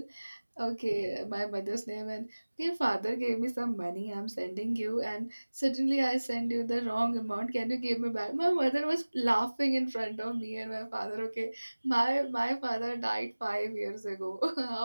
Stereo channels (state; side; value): inverted; both; correlation -1.00